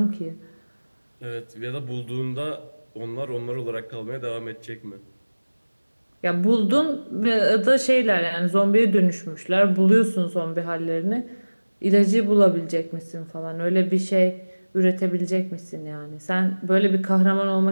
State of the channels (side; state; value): both; inverted; correlation -1.00